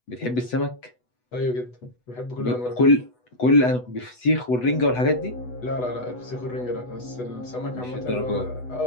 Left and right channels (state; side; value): late; right; 8.1 ms